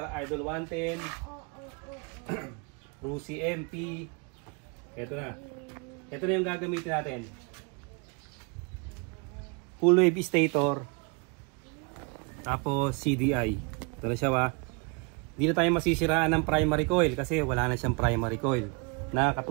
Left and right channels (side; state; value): left; quieter; 31.9 dB